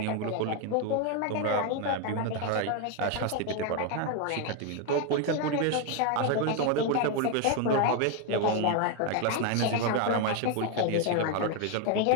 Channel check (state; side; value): different; both; correlation 0.01